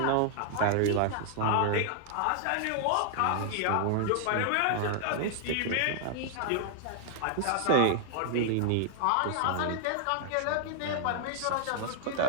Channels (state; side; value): different; both; correlation 0.00